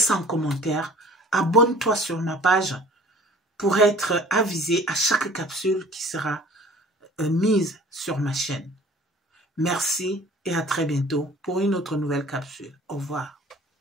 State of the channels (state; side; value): normal; both; correlation 0.49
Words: un commentaire, abonne-toi sur ma page pour être avisé à chaque capsule qui sera mise sur ma chaîne. Merci et à très bientôt pour une autre nouvelle capsule. Au revoir.